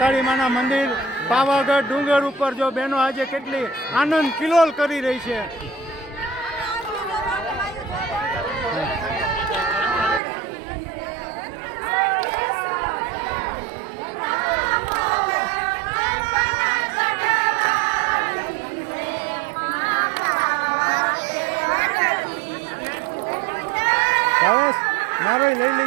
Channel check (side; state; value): left; drops out; at 10.2 s